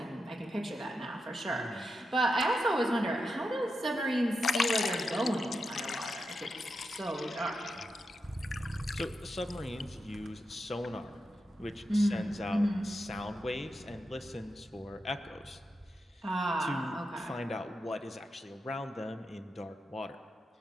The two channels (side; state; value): both; normal; correlation 0.87